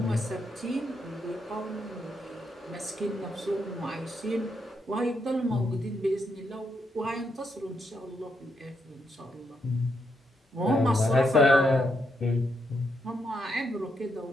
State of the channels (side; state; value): both; normal; correlation 0.79